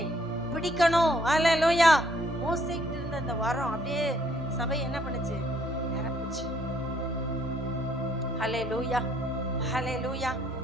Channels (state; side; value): noise; left; rumble, 25 dB below the sound